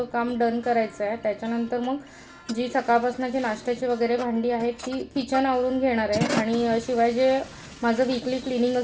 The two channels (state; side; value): identical; both; correlation 1.00